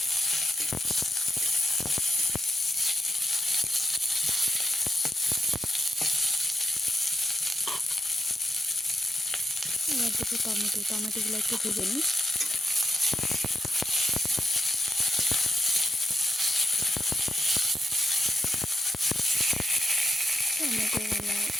এবার দেবো টমেটোগুলো একটু ভেজে নিই। টমেটোগুলো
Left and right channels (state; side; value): normal; both; correlation 0.83